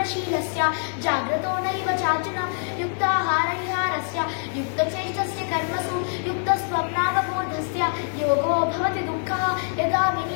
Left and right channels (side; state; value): right; silent; digital silence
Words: जाग्रतो नैव चार्जुन युक्ताहारविहारस्य युक्तचेष्टस्य कर्मसु युक्तस्वप्नावबोधस्य योगो भवति दुःखः यदा